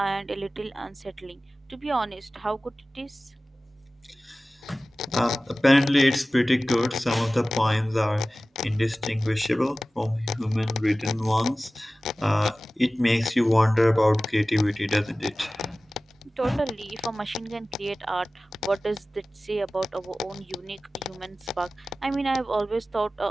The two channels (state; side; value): normal; both; correlation 0.97